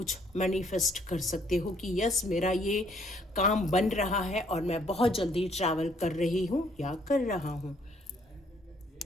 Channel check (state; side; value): normal; both; correlation 0.65